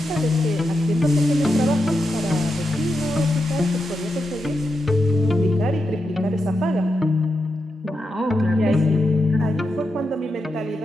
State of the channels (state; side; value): normal; both; correlation 0.86